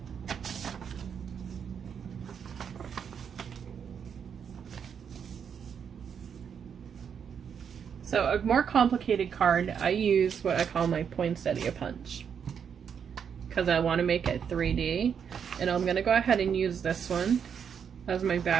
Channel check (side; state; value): left; quieter; 7.4 dB